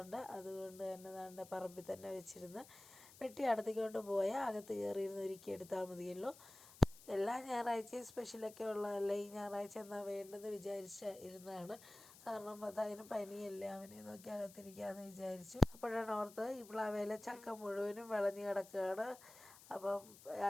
ഉണ്ട്. അതുകൊണ്ട് തന്നെ നമ്മുടെ പറമ്പിൽ തന്നെ വെച്ചിരുന്ന് വെട്ടി അടുത്തേക്കൊണ്ട് പോയാൽ അകത്ത് കയറിയിരുന്ന് ഒരുക്കി എടുത്താൽ മതിയല്ലോ. എല്ലാ ഞായറാഴ്ചയും സ്പെഷ്യലൊക്കെ ഉള്ളതല്ല, ഈ ഞായറാഴ്ച എന്നാൽ വേണ്ടെന്ന് വിചാരിച്ച് ഇരുന്നതാണ്. കാരണം അതിന് പനിയല്ലേ, അവനെ നോക്കി അകത്തിരിക്കാമെന്ന് വിചാരിച്ചു. അപ്പോഴാണ് ഓർത്തത് ഈ പ്ലാവേലെ ചക്ക മുഴുവനും വിളഞ്ഞ് കിടക്കുകയാണ്. അപ്പം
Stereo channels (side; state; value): left; noise; hiss, 20 dB below the sound